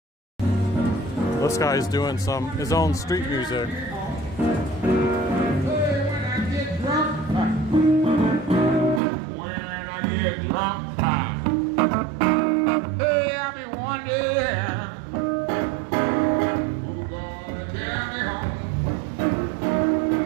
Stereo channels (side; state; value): left; drops out; at 9.0 s